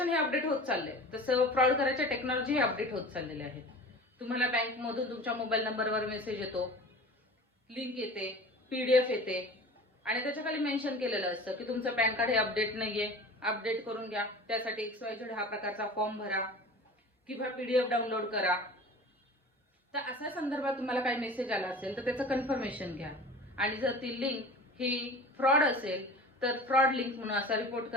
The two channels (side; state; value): both; normal; correlation 0.38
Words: हे अपडेट होत चाललंय तसं फ्रॉड करायच्या टेक्नॉलॉजी हे अपडेट होत चाललेले आहेत. तुम्हाला बँकमधून तुमच्या मोबाईल नंबरवर मेसेज येतो, लिंक येते, PDF येते आणि त्याच्या खाली मेन्शन केलेलं असतं की तुमचं पॅन कार्ड हे अपडेट नाहीये, अपडेट करून घ्या. त्यासाठी XYZ हा प्रकारचा फॉर्म भरा किंवा PDF डाउनलोड करा. तर अशा संदर्भात तुम्हाला काही मेसेज आला असेल तर त्याचं कन्फर्मेशन घ्या आणि जर ती लिंक ही फ्रॉड असेल तर फ्रॉड लिंक म्हणून असा रिपोर्ट